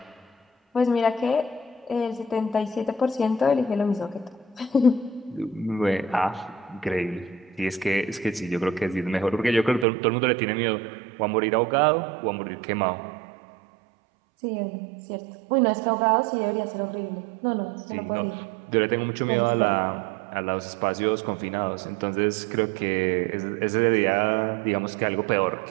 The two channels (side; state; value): left; drops out; at 9.9 s